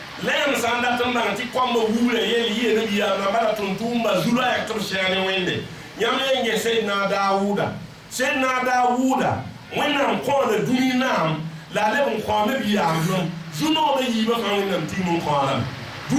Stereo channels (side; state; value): both; identical; correlation 1.00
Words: لم سانداتن بانتي كوم ووله يلي ينبي يا مبارا تنتومبا زولا يكتب شاني وينده يامي سيدنا داوود وينام كون دوني نام لا لبن كوم بيام زونو بي يبا كان وينام تيمون كولام